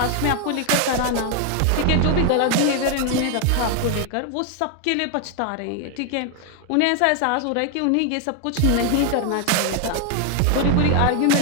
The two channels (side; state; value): both; different; correlation 0.01